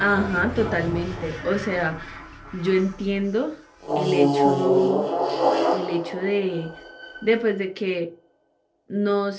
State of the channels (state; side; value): identical; both; correlation 1.00